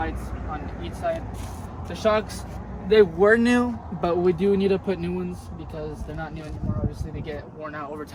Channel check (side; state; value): both; identical; correlation 1.00